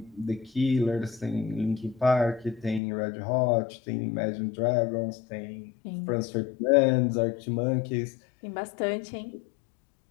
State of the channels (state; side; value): drops out; right; at 2.8 s